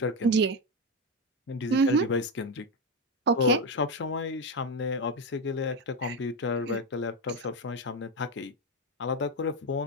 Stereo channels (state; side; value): normal; both; correlation 0.11